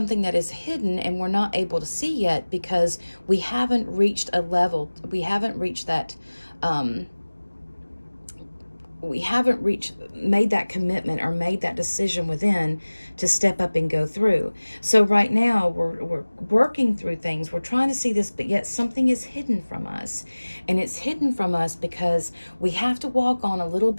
that is hidden and we're not able to see yet because we haven't reached a level. We haven't reached that. Made that commitment or made that decision within to step up and go through. So right now we're working through things. We're trying to see this, but yet something is hidden from us. And it's hidden from us because we have to walk on a little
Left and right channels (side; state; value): both; inverted; correlation -1.00